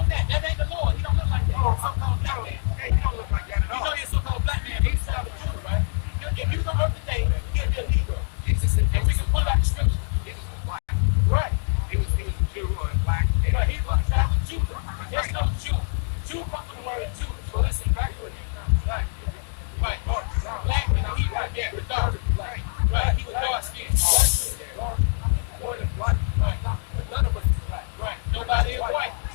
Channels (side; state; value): right; silent; digital silence